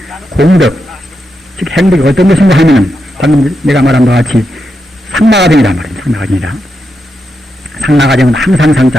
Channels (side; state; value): both; normal; correlation 0.85